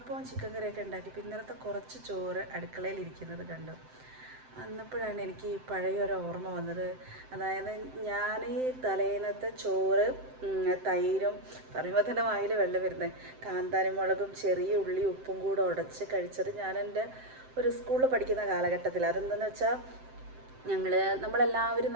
ചിക്കൻ കറിയൊക്കെ ഉണ്ടാക്കിയപ്പോൾ ഇന്നലത്തെ കുറച്ച് ചോറ് അടുക്കളയിൽ ഇരിക്കുന്നത് കണ്ടു. അന്നപ്പോഴാണ് എനിക്ക് പഴയൊരു ഓർമ്മ വന്നത്. അതായത് ഞാൻ ഈ തലേന്നത്തെ ചോറ് തൈരും പറയുമ്പോൾ തന്നെ വായിൽ വെള്ളം വരുന്നത്, കാന്താരി മുളകും ചെറിയ ഉള്ളി ഉപ്പും കൂടെ ഉടച്ച് കഴിച്ചത് ഞാൻ എൻ്റെ ഒരു സ്കൂളിൽ പഠിക്കുന്ന കാലഘട്ടത്തിൽ. അതെന്തെന്ന് വെച്ചാൽ നമ്മളെല്ലാവരും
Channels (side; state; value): left; late; 7.7 ms